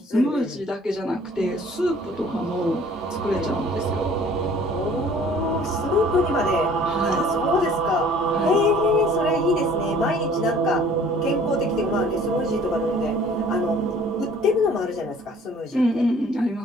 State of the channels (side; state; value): both; normal; correlation 0.52